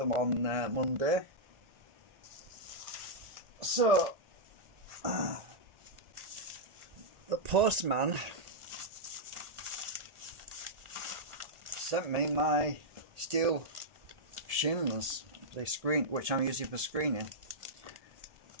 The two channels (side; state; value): left; late; 1.7 ms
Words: on Monday. So, the postman sent me my steel shims, the screen, which I'm using for screening.